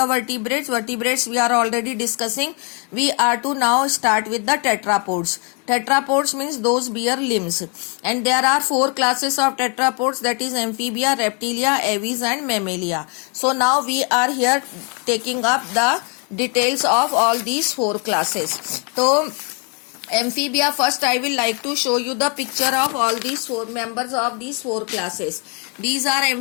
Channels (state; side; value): quieter; right; 35.8 dB